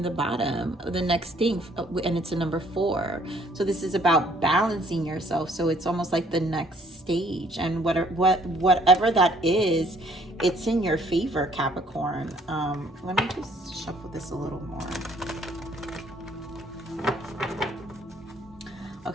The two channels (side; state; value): both; normal; correlation 0.62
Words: the bottom, the next thing, and it's a number 4. So this is about balancing yourself. So it's almost like the next stage, and whatever that is, it's in your favor, Capricorn. Let me just shuffle this a little more.